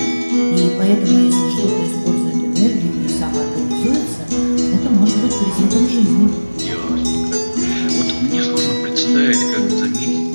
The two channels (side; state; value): both; inverted; correlation -1.00